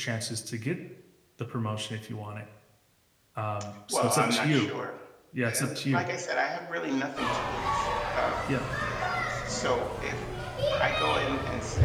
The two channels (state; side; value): identical; both; correlation 1.00